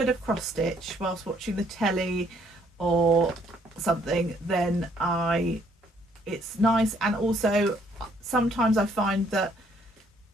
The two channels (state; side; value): normal; both; correlation 0.66